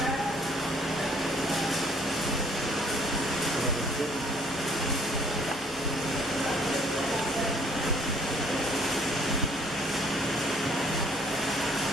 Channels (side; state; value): both; normal; correlation 0.60